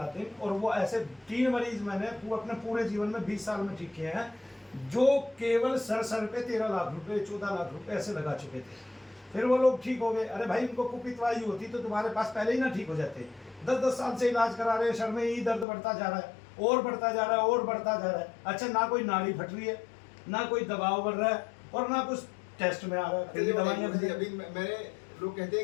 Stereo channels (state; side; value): drops out; right; at 15.7 s